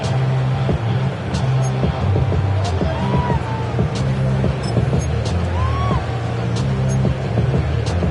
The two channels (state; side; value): identical; both; correlation 1.00